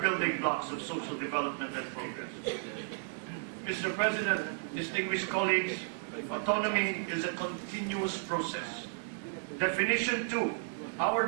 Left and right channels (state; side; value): silent; left; digital silence